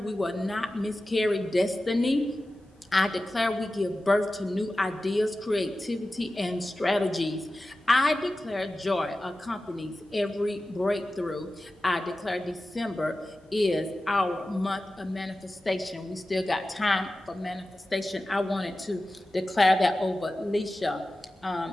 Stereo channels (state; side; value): normal; both; correlation 0.94